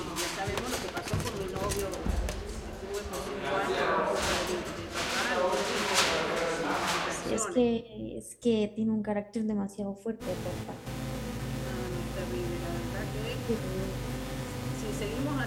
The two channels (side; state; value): both; identical; correlation 1.00